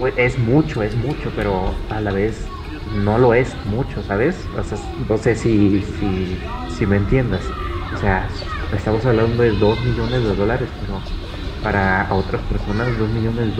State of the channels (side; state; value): both; identical; correlation 1.00